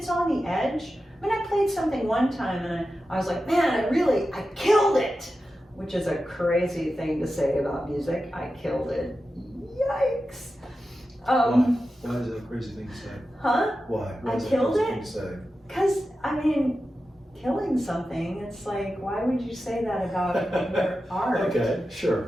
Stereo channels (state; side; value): normal; both; correlation 0.92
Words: on the edge. I played something one time and I was like, man, I killed it, which is a crazy thing to say about music. I killed it. Yikes. Why is that a crazy thing to say? Huh? Why? I killed it? Because, killing something, it's like, why would you say that about your art? Okay,